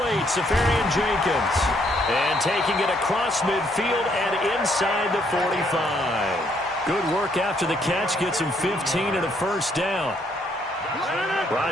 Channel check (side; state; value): both; normal; correlation 0.70